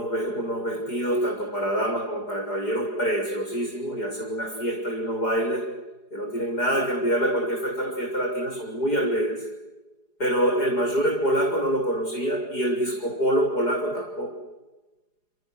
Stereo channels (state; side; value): late; right; 4.8 ms